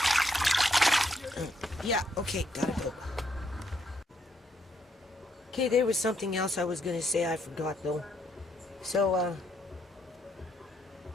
Yeah, okay, gotta go. Okay, there was something else I was going to say I forgot, though. So,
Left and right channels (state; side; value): normal; both; correlation 0.74